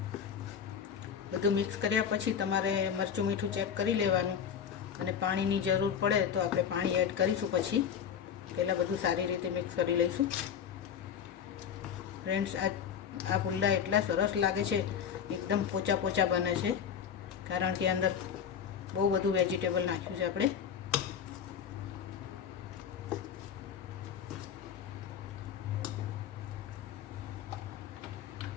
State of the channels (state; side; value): quieter; right; 8.1 dB